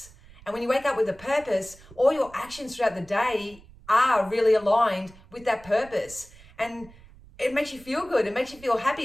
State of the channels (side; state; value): right; noise; rumble, 23 dB below the sound